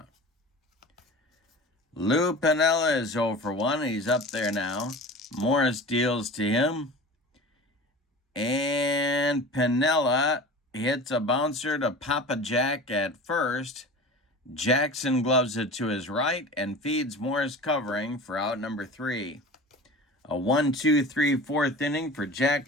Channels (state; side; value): normal; both; correlation 0.36